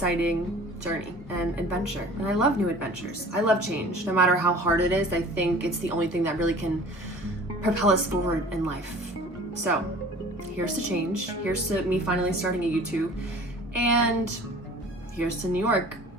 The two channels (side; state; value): both; normal; correlation 0.45